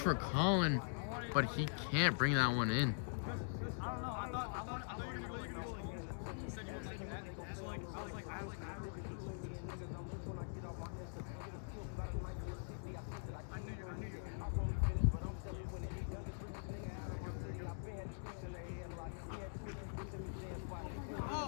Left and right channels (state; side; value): silent; right; digital silence